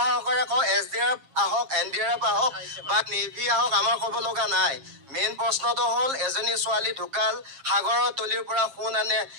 সহকাৰে কওঁ, SDRF আহক, NDRF আহক বা নেভি আহক, আমাৰ ক'ব লগা নাই। মেইন প্ৰশ্নটো হ'ল, এজনী ছোৱালী ঢুকাল, সাগৰৰ তলিৰ পৰা সোণ আনে,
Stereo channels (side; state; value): left; late; 7.4 ms